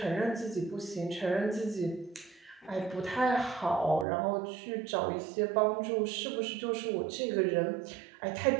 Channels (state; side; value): drops out; left; at 4.0 s